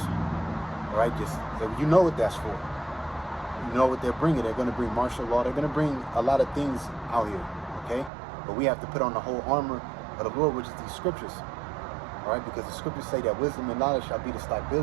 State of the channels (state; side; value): drops out; left; at 8.1 s